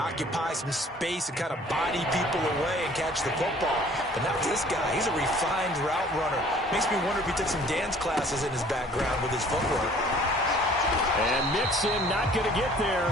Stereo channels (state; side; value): normal; both; correlation 0.53